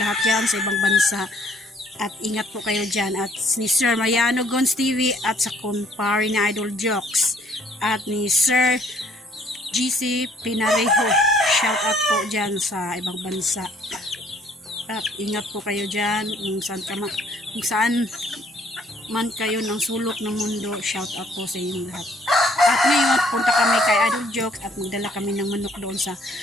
lahat dyan sa ibang bansa. At ingat po kayo dyan. At ni Sir Mariano Gons TV at sa kumpare ni Idol Jokes. At ni Sir GC Pinarejo. Shout out po dyan sa ibang bansa. At ingat po kayo dyan kung saan man kayo ng sulok ng mundo. Shout out po sa inyong lahat. At ngayon punta kami kay Idol Jokes at magdala kami ng manok doon sa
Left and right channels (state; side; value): normal; both; correlation 0.62